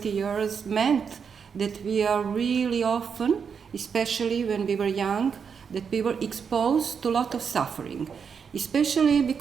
years meant that we are really often, especially when we were young, that we were exposed to a lot of suffering, especially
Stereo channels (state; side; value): quieter; left; 6.5 dB